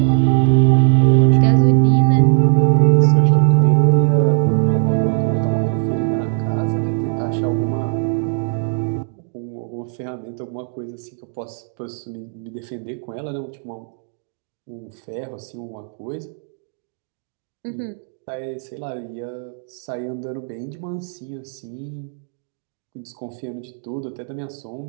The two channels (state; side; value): silent; left; digital silence